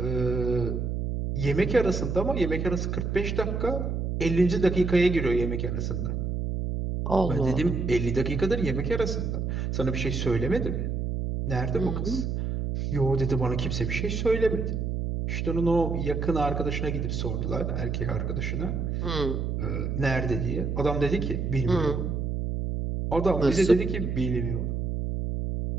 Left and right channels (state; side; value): noise; right; hum, 1 dB below the sound